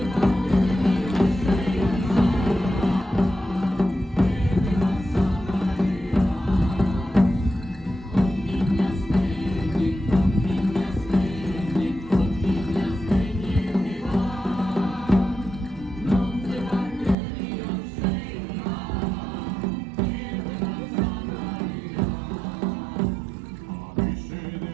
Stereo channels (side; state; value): left; drops out; at 17.2 s